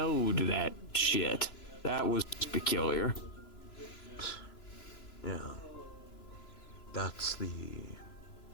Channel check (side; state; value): right; late; 3.0 ms